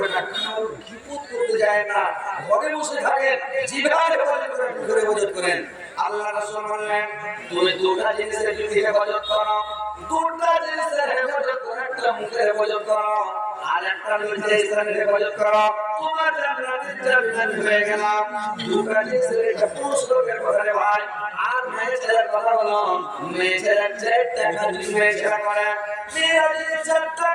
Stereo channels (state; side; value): identical; both; correlation 1.00